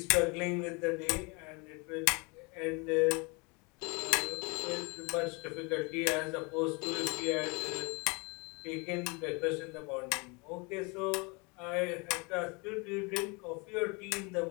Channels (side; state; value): right; quieter; 29.6 dB